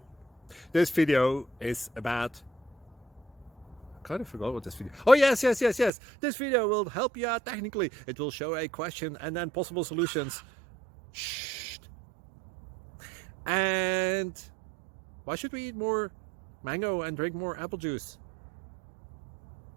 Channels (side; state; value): left; drops out; at 5.9 s